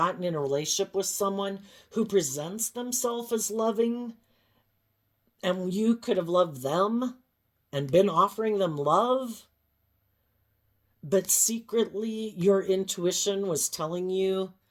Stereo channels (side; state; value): both; identical; correlation 1.00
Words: in a relationship with someone who presents themselves as loving, and you could have loved them and been offering them love, but secretly your intuition was telling you